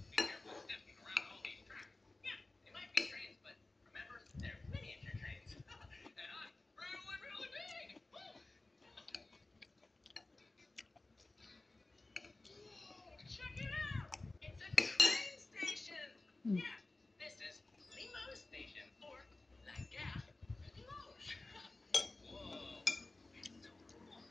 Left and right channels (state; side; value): quieter; right; 3.0 dB